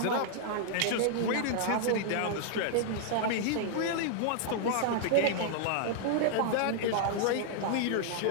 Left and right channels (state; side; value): different; both; correlation -0.01